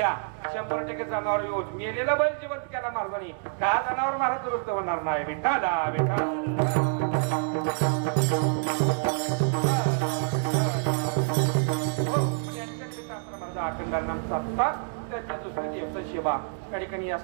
100% जनावर येऊन मेलेला बैल जिवंत केला महाराजांनी. का जनावर महाराज दुरुस्त होणार नाही. विठाला त्यांच्या दुसऱ्या दिवस सेवा त्या ठिकाणी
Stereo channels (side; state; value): left; silent; digital silence